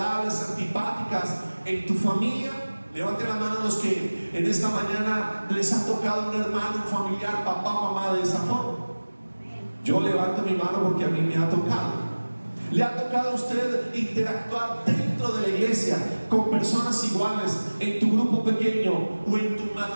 antipáticas en tu familia. Levante la mano los que en esta mañana les ha tocado un hermano, un familiar, papá, mamá de esa forma. Yo levanto mi mano porque a mí me ha tocado. ¿Le ha tocado a usted interactuar dentro de la iglesia con personas iguales en tu grupo pequeño o en tu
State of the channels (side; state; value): both; inverted; correlation -1.00